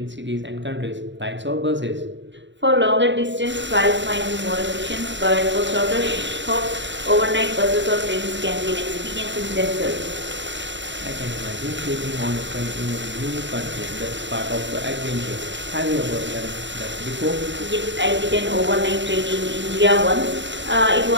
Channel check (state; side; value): late; left; 0.53 ms